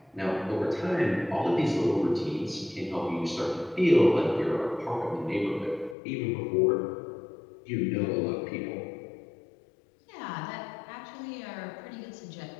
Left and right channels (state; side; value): drops out; right; at 6.0 s